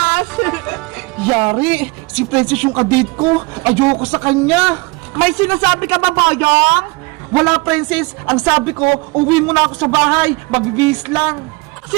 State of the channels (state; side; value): quieter; left; 25.6 dB